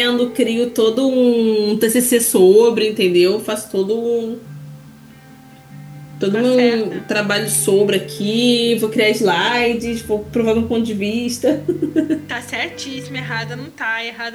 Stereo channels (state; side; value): identical; both; correlation 1.00